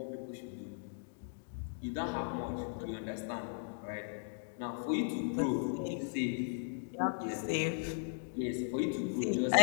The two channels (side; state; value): right; silent; digital silence